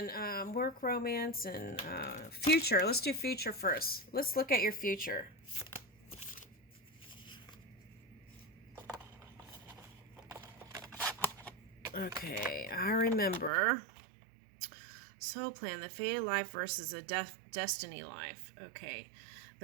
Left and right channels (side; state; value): left; drops out; at 13.5 s